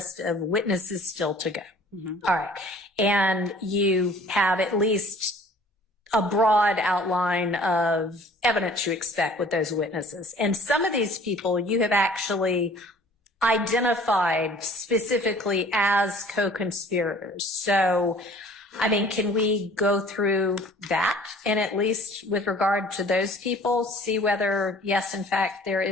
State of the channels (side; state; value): both; normal; correlation 0.51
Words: of witnesses still to go. All right. And you have at least a broad outline of evidence you expect with those witnesses. And some of these people you have actually identified specifically as co-conspirators. So, I mean, can we go through that and at least with regard to those people, see whether, yes, in fact, there